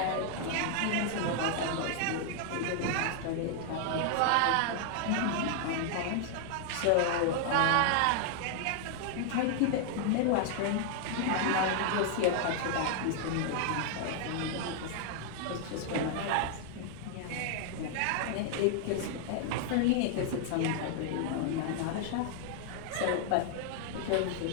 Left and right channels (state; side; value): different; both; correlation 0.00